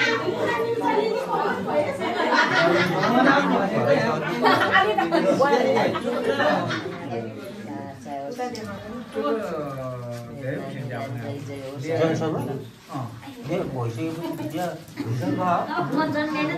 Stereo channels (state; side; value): identical; both; correlation 1.00